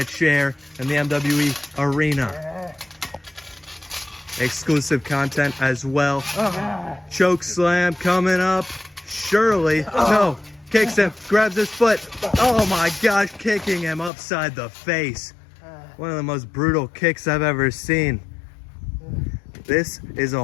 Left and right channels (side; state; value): right; drops out; at 14.1 s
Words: chair in the MWE arena. Exclusive content as well. Choke slam coming up. Shirley, no, kicks him, grabs his foot. Oh my gosh, kicking him upside the face. One of the most brutal kicks I've ever seen. This is a